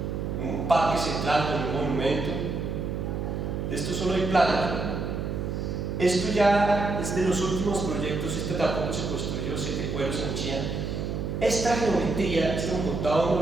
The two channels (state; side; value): noise; right; hum, 3 dB below the sound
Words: Un parque central con un monumento. De esto solo hay planos, ¿no? Esto ya es de los últimos proyectos. Este tampoco se construyó, 7 cueros en Chía. Esta geometría, esto me contaba uno